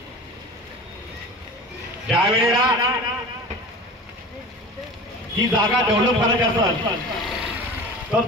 ज्यावेळेला ही जागा डेव्हलप करायची असेल तर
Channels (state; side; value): normal; both; correlation 0.36